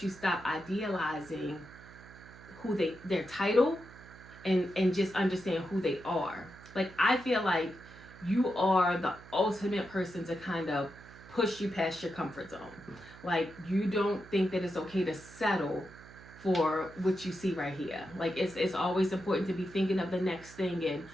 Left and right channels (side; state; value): right; noise; hum, 19 dB below the sound